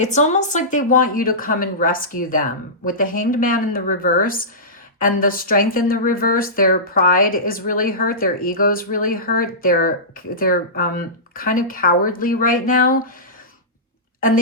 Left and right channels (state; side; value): normal; both; correlation -0.19